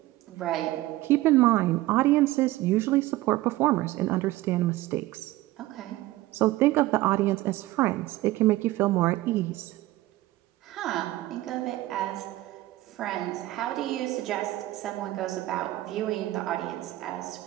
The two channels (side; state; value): left; quieter; 17.2 dB